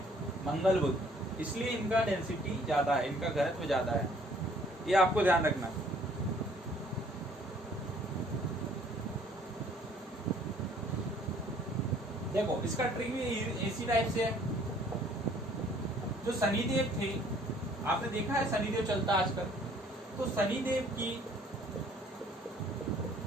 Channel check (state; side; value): normal; both; correlation 0.59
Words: मंगल बुध, इसलिए इनका डेंसिटी ज्यादा है, इनका घनत्व ज्यादा है, ये आपको ध्यान रखना। देखो इसका ट्रिक भी इसी टाइप से है। जो शनिदेव थे, आपने देखा है शनिदेव चलता आजकल, तो शनिदेव की